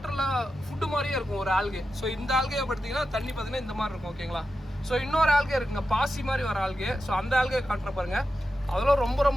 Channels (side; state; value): both; normal; correlation 0.90